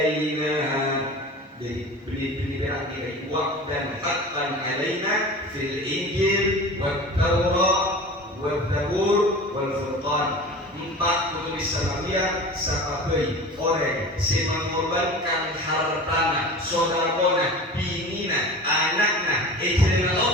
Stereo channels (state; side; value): normal; both; correlation 0.36